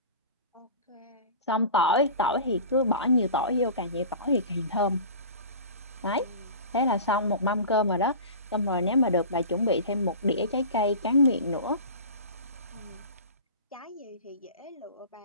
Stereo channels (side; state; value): both; inverted; correlation -0.36